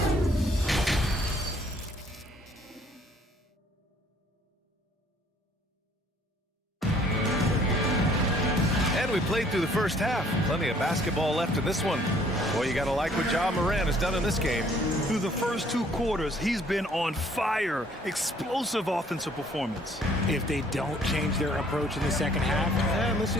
And we played through the first half. Plenty of basketball left in this one. Boy, you got to like what Ja Morant has done in this game. Through the first 2 quarters, he's been on fire. Explosive offensive performance. If they don't change their approach in the second half, let's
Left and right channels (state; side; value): normal; both; correlation 0.60